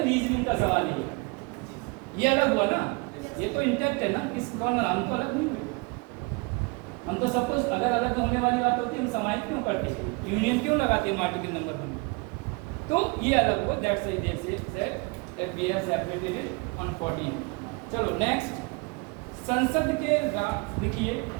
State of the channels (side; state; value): left; quieter; 28.8 dB